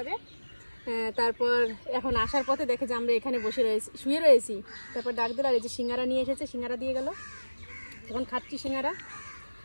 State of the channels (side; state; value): both; inverted; correlation -1.00